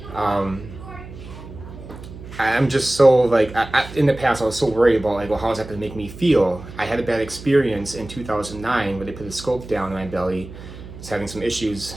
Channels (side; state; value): right; noise; hum, 14 dB below the sound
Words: I'm just so like, in the past I was so worried about like, well, how's that gonna make me feel? I had a bad experience in 2009 where they put a scope down in my belly. I was having some issues.